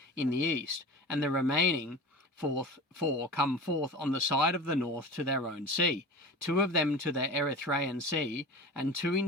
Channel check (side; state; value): both; normal; correlation 0.33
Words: in the east, and the remaining 4 come forth on the side of the north to their own sea, 2 of them to the Erythraean Sea, and 2